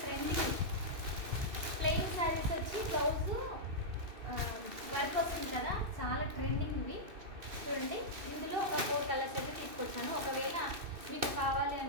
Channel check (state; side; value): late; left; 2.6 ms